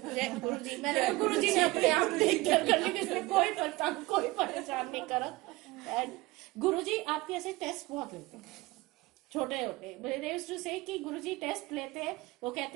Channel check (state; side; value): quieter; left; 21.0 dB